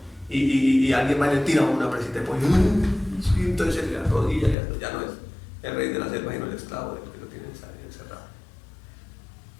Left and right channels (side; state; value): right; drops out; at 4.5 s